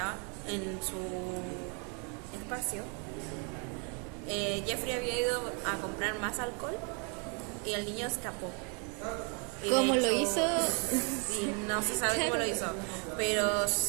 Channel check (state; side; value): quieter; left; 36.3 dB